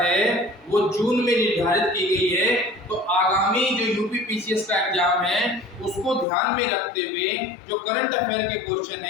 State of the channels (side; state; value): right; drops out; at 6.2 s